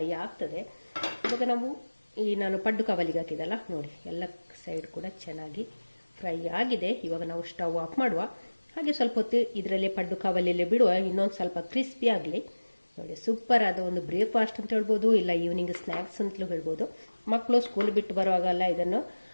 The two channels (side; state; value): both; inverted; correlation -1.00